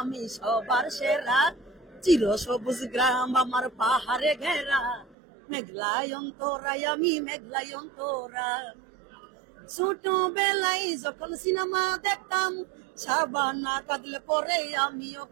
আমি সবার সেরা, চির সবুজ গ্রাম আমার পাহাড়ে ঘেরা, মেঘলায়ন্তরায় আমি, মেঘলায়ন্তরা। ছোটবেলায় যখন সিনেমা দেখতাম, সাবানা কাঁদলে পরে আমিও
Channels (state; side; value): drops out; left; at 5.2 s